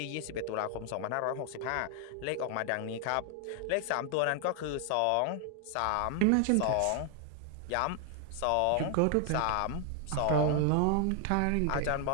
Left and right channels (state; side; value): different; both; correlation 0.00